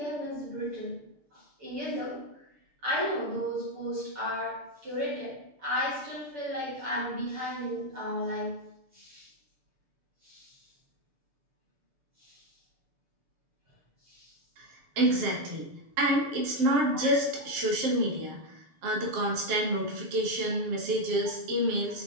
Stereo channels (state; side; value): late; left; 7.4 ms